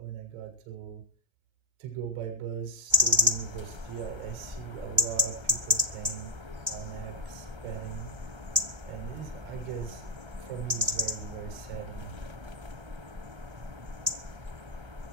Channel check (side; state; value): left; late; 1.3 ms